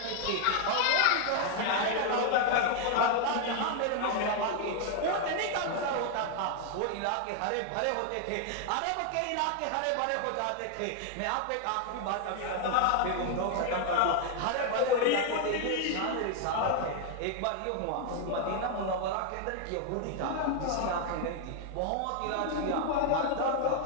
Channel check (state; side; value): different; both; correlation 0.00